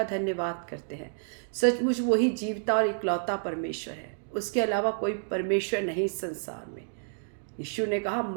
धन्यवाद करते हैं। सचमुच वही जीवता और इकलौता परमेश्वर है, उसके अलावा कोई परमेश्वर नहीं संसार में। यीशु ने कहा,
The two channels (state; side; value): silent; left; digital silence